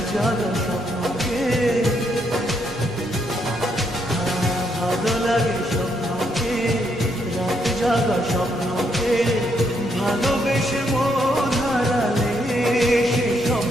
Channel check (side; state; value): both; normal; correlation 0.76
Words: জাগা স্বপ্নকে, ভালো লাগে স্বপ্নকে, রাত জাগা স্বপ্নকে, ভালোবেসে মন হারালে সে